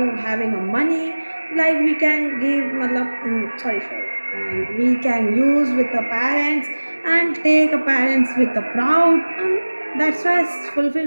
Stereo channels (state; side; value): inverted; both; correlation -1.00